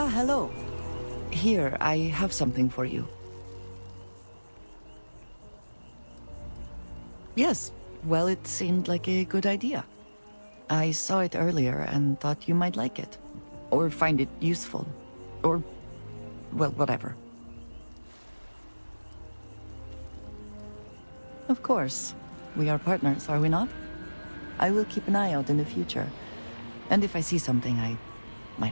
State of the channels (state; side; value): inverted; both; correlation -1.00